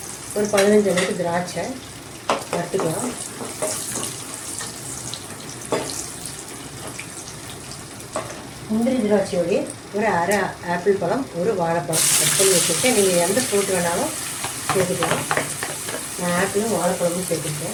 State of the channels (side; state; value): both; identical; correlation 1.00